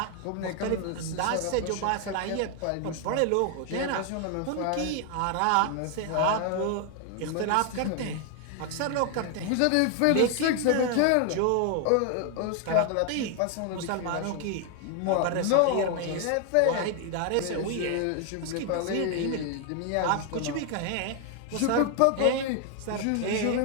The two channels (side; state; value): both; different; correlation 0.00